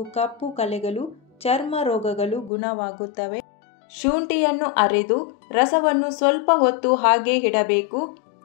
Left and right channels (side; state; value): right; drops out; at 2.5 s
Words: ಕಪ್ಪು ಕಲೆಗಳು, ಚರ್ಮ ರೋಗಗಳು ಗುಣವಾಗುತ್ತವೆ. ಶುಂಠಿಯನ್ನು ಅರೆದು ರಸವನ್ನು ಸ್ವಲ್ಪ ಹೊತ್ತು ಹಾಗೆ ಇಡಬೇಕು.